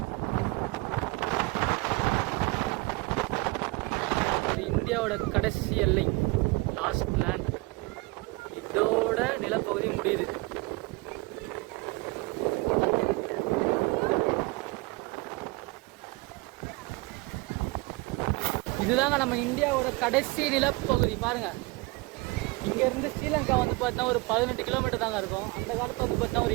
இந்தியாவோட கடைசி எல்லை லாஸ்ட் லேண்ட். இதோட நிலப்பகுதி முடியுது. இதுதாங்க நம்ம இந்தியாவோட கடைசி நிலப்பகுதி. பாருங்க இங்கேருந்து ஸ்ரீலங்கா வந்து பார்த்தீங்கன்னா ஒரு 18 கிலோமீட்டர் தாங்க இருக்கும். அந்த காலத்தில் வந்து பார்த்தீங்கன்னா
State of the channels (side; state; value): left; quieter; 24.8 dB